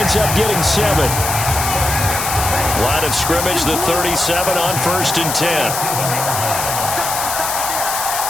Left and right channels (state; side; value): noise; left; hiss, 3 dB below the sound